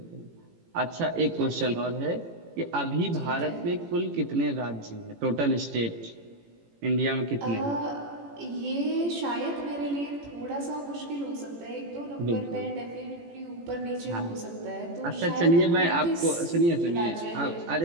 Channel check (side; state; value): left; late; 18 ms